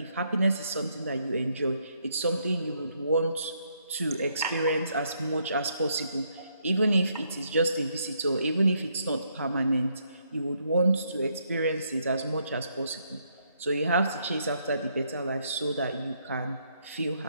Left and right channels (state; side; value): inverted; both; correlation -0.74